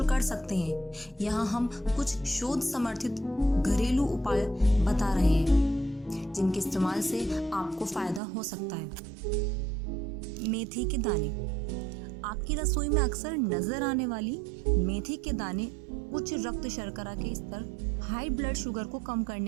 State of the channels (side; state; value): left; drops out; at 8.2 s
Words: कर सकते हैं। यहाँ हम कुछ शोध समर्थित घरेलू उपाय बता रहे हैं जिनके इस्तेमाल से आपको फायदा हो सकता है। मेथी के दाने। आपकी रसोई में अक्सर नजर आने वाली मेथी के दाने उच्च रक्त शर्करा के स्तर, हाई ब्लड शुगर को कम